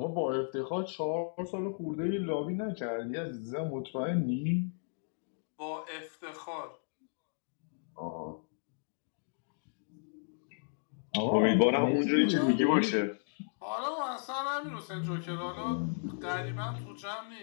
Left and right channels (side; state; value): right; silent; digital silence